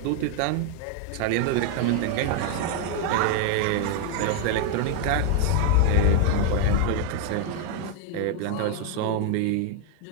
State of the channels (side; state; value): both; different; correlation 0.01